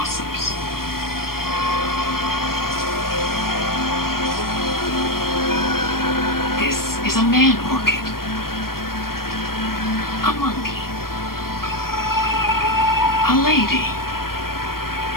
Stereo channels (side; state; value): right; late; 0.93 ms